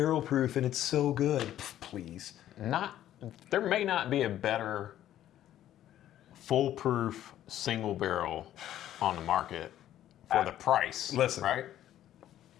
proof, and it's so good. Pff, please. There may not be a better foolproof single barrel on the market for the price. Listen. Right?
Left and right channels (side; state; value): right; quieter; 12.2 dB